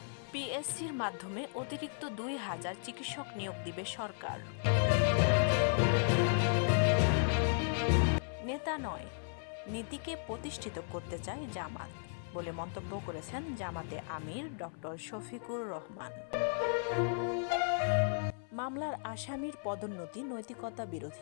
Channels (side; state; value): right; silent; 54 dB below the other